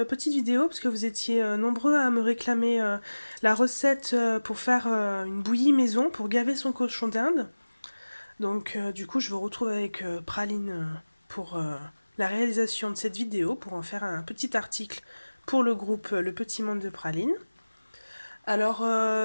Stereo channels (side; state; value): both; inverted; correlation -1.00